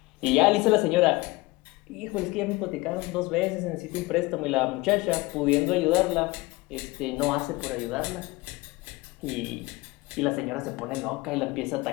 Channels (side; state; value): right; quieter; 22.3 dB